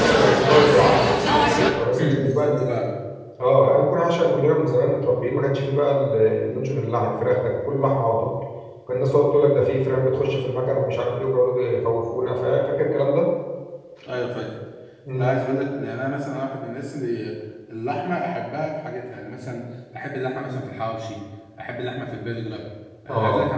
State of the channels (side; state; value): both; identical; correlation 1.00